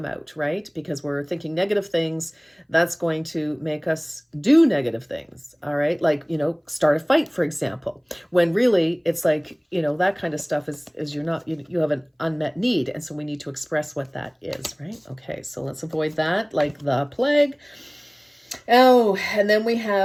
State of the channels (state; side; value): identical; both; correlation 1.00